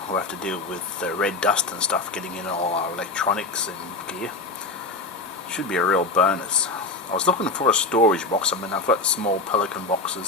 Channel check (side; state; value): right; quieter; 3.4 dB